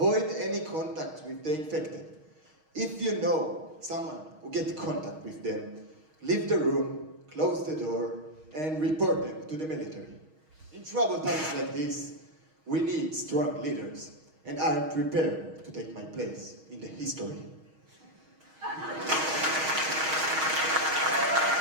any contact with the infected. If you know someone who get contact with them, leave the room, close the door, and report them to the military. In troubled times like this, we need strong leaders, and I am prepared to take my place in the history.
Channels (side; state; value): left; late; 6.4 ms